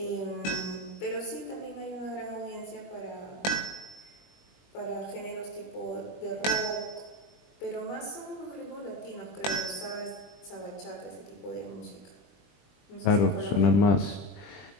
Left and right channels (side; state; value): right; late; 20 ms